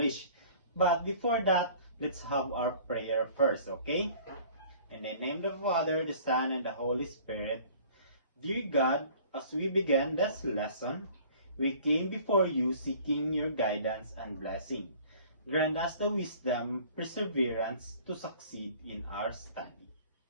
But before that, let's have our prayer first, okay? In the name of the Father, the Son, and the Holy Spirit. Dear God, as we begin this lesson, we came before you seeking your guidance and blessing. Grant us the wisdom, perseverance to succeed in our study.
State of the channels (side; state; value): both; inverted; correlation -0.50